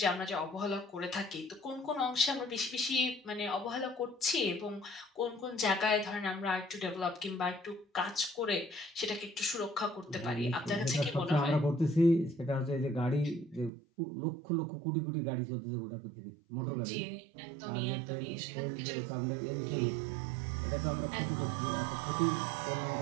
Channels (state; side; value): drops out; left; at 13.7 s